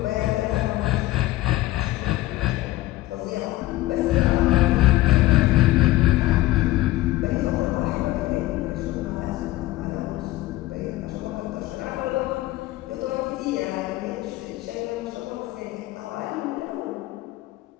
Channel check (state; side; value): quieter; right; 17.3 dB